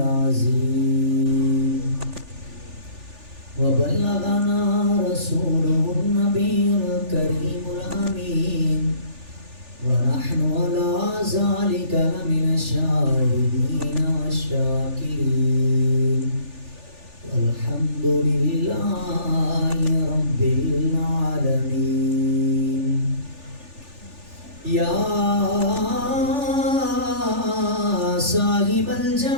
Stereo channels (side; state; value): left; late; 3.4 ms